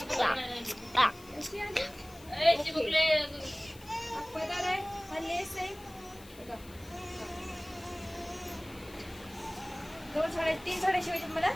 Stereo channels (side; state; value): left; noise; hiss, 21 dB below the sound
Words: अशी आली. चिमुकले पदर आहे, हा लेस आहे. बघा. 2 साड्या 3 साड्या शिवायच्या मला.